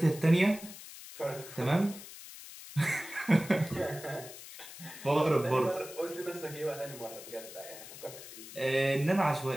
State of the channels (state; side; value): noise; left; hiss, 14 dB below the sound